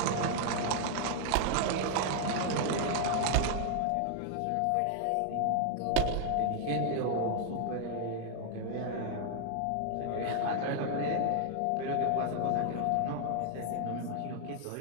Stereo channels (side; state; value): both; different; correlation 0.00